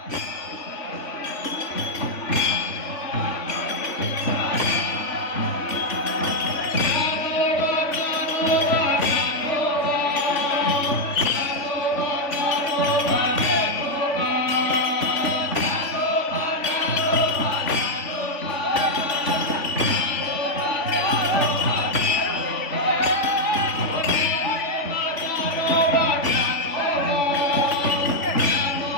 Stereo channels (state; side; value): late; right; 3.5 ms